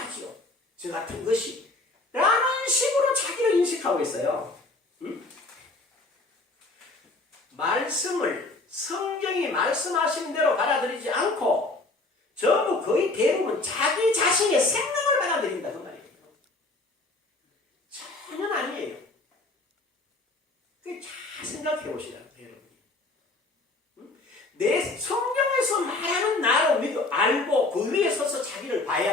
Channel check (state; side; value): quieter; right; 3.1 dB